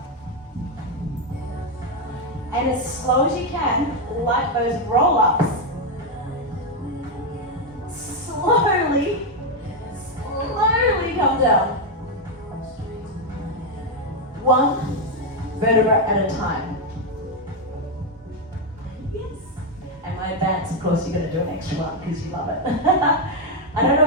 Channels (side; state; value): both; normal; correlation 0.03